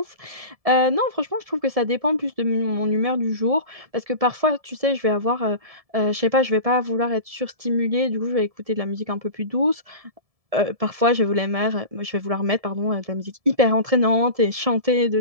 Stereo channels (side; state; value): left; late; 1.7 ms